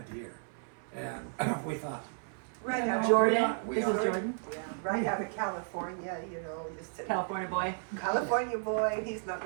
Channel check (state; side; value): silent; left; 56 dB below the other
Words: deer, and we thought, Right out, Jordan. we This ought is to- Jordan, yeah, right out of California, you know, just a California boy. California boy, he's not